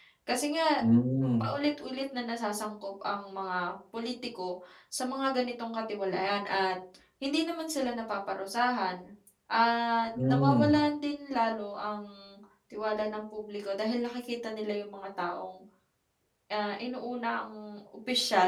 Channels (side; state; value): both; identical; correlation 1.00